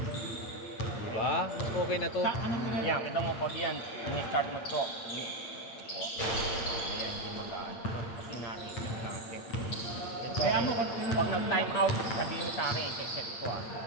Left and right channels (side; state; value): right; late; 8.8 ms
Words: Diba? Okay na to. Yan, kita mo pag yan, ini-start mo to. Ayan, hindi magaan. Kasi narin natin. Kaya mo, pag nag-time out, sabihin mo sa akin, i-set ko